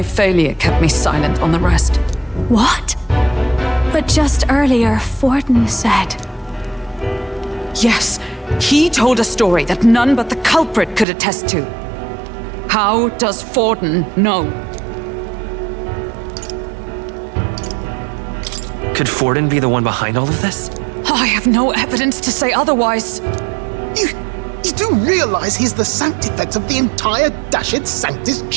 failure kept me silent on the rest. What? But just earlier, Forden said... Yes, he told a story that none but the culprit could attest to. How does Forden know? Could Forden be the one behind all of this? I have no evidence to say otherwise. You do realize he's the sanctifex of the entire Dashit Sanctus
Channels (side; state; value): left; drops out; at 11.1 s